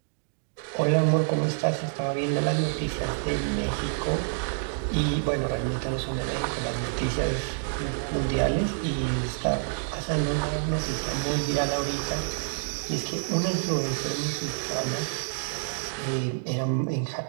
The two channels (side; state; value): left; silent; digital silence